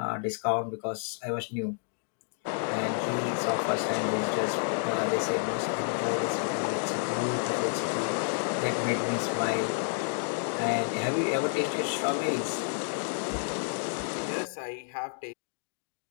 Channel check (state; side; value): silent; right; digital silence